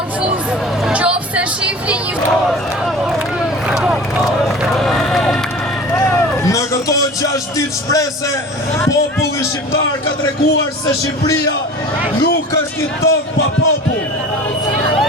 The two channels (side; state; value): both; normal; correlation 0.38